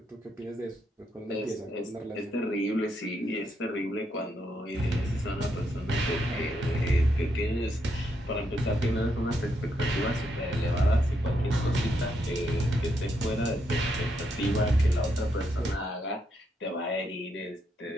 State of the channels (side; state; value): both; normal; correlation 0.78